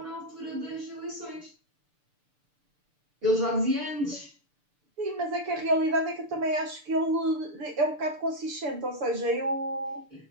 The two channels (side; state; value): left; late; 6.8 ms